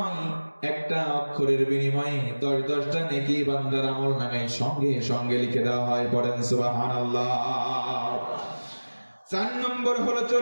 একটা অক্ষরের বিনিময়ে 10টা নেকি বান্দার আমলনামায় সঙ্গে সঙ্গে লিখে দেওয়া হয়। পড়েন সুবহানাল্লাহ। 4 নম্বর হলো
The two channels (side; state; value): both; inverted; correlation -1.00